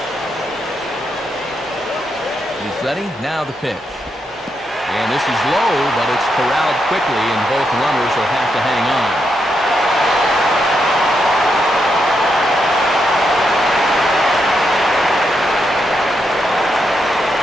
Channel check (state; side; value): normal; both; correlation 0.82